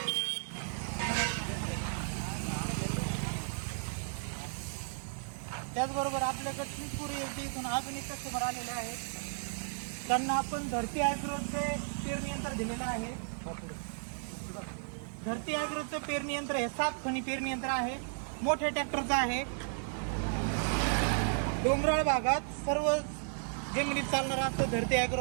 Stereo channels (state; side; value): silent; left; digital silence